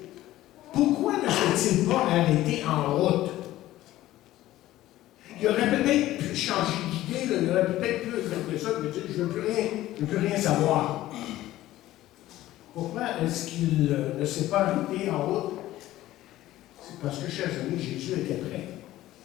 pourquoi ne s'est-il pas arrêté en route? Il aurait peut-être pu changer d'idée, il aurait peut-être pu faire ça, mais dire je ne veux plus rien savoir. Pourquoi est-ce qu'il ne s'est pas arrêté en route? C'est parce que, chers amis, Jésus était prêt.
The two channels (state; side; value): quieter; right; 15.2 dB